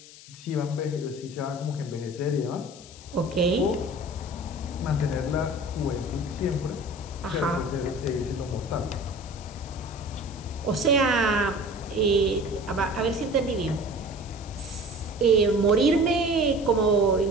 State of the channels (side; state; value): left; noise; hiss, 19 dB below the sound